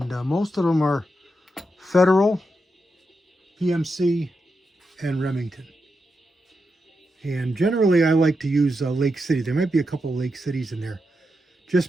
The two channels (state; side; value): normal; both; correlation 0.86